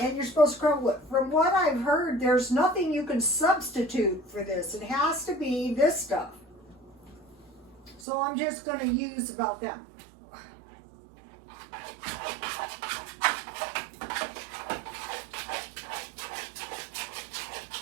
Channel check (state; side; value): drops out; left; at 8.1 s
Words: and you're supposed to crumble it, from what I've heard, there's nothing you can substitute for this. It has to be this stuff. So I'm just going to use about that.